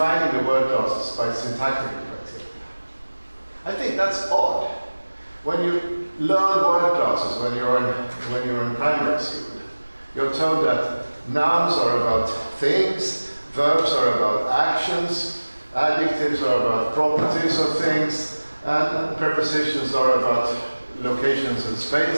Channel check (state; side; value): inverted; both; correlation -1.00